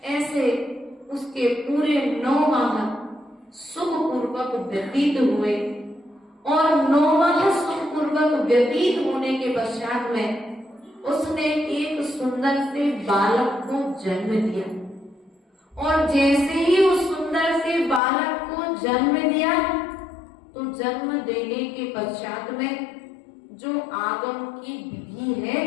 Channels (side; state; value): right; drops out; at 18.0 s